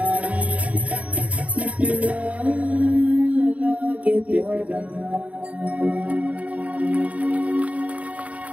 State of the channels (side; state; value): left; late; 0.067 ms